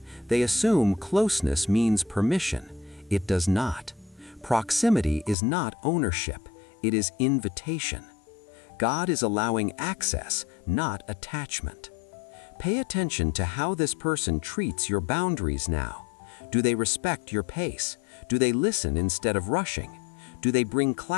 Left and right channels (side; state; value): right; drops out; at 5.4 s